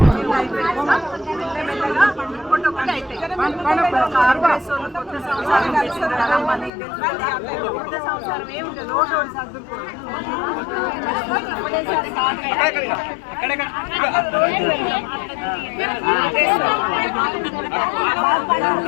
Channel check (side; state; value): right; drops out; at 6.7 s